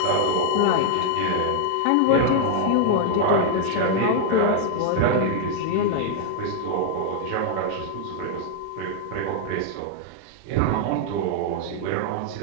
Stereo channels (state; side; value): different; both; correlation 0.00